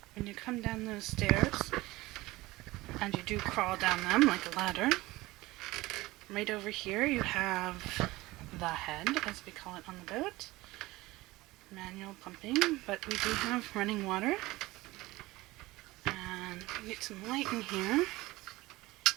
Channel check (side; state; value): left; quieter; 19.6 dB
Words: When you come down those stairs, and you do crawl down them like a ladder, right over here you have the head, as we call it on the boat. Manual pumping, but we do have running water. And we get some light in here.